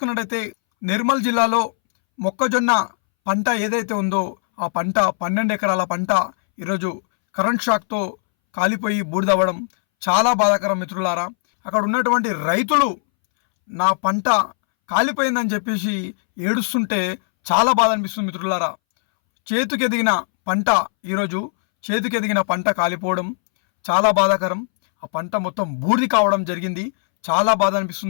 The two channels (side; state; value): right; silent; 64 dB below the other